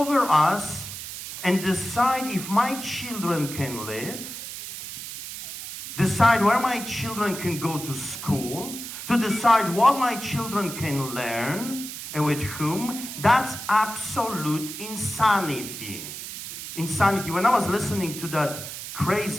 us and decide if my children can live, decide where my children can go to school, to decide what my children can learn, and with whom? That's absolute insanity. Insanity. When I was listening to that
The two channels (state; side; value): noise; right; hiss, 9 dB below the sound